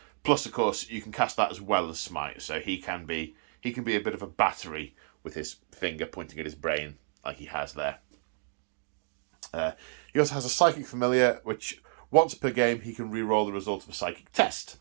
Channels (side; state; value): left; silent; 57 dB below the other